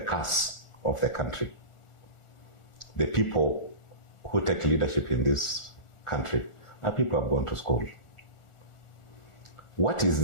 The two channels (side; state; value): right; late; 1.4 ms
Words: curse of the country. The people who take leadership in this country are people who have gone to school. What is